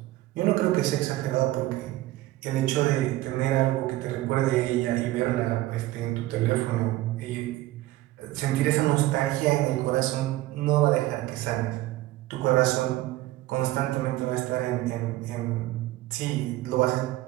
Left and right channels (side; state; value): left; quieter; 16.8 dB